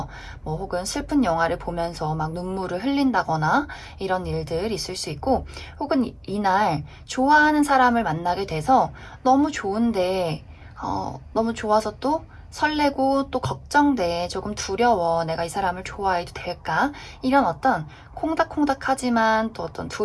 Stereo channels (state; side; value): identical; both; correlation 1.00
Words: 뭐 혹은 슬픈 영화를 보면서 막 눈물을 흘린다거나 이런 일들 있을 수 있고, 혹은 이날 좋아하는 사람을 만나게 돼서 너무 좋은데 너무 좋아서 또 설레고 또 걱정돼. 조금 두려워. 내가 이 사람을 좋아해도 될까? 이런 어떤 콩닥콩닥하지만 또 어떤